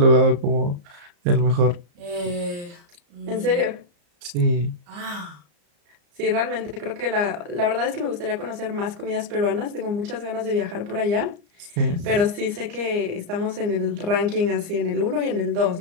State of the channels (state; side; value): late; left; 34 ms